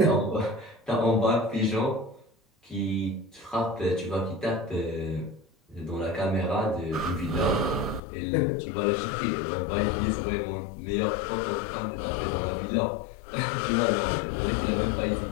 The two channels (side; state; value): right; drops out; at 8.0 s